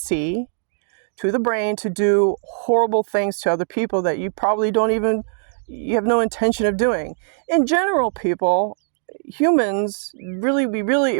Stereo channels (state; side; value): silent; left; digital silence